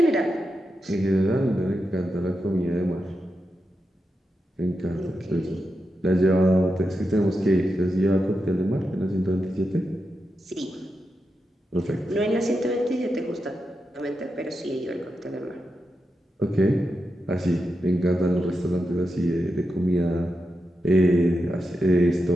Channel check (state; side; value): normal; both; correlation 0.87